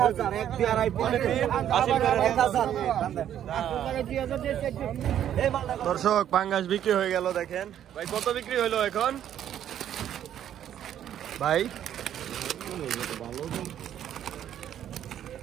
এক দিয়ারাই পড়েছে 1,000 দর্শক পাঙ্গাস বিক্রি হয়ে গেল দেখেন ভাই। কত বিক্রি হইলো এখন ভাই?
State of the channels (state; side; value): quieter; left; 10.5 dB